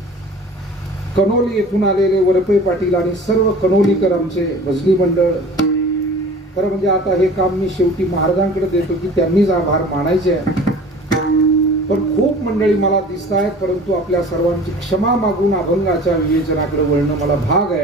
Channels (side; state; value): both; normal; correlation 0.43